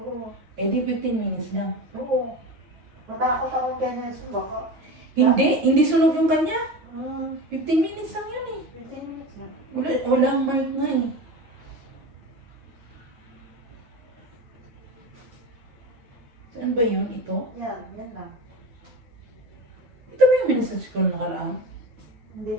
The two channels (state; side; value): late; left; 9.2 ms